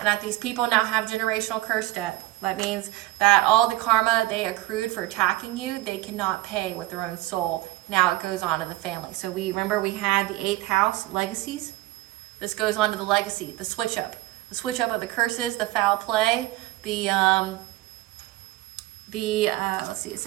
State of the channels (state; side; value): quieter; left; 17.9 dB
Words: that these people now have generational curse debt. That means that all the karma they accrued for attacking you, they cannot pay with their own soul. Now it goes on to the family. So we had the 8th house, legacies. This goes on to the legacy, the switch up of the curses, the foul play, let's see, it